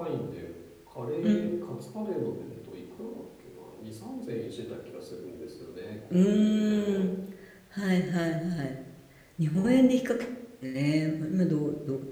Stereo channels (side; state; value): both; identical; correlation 1.00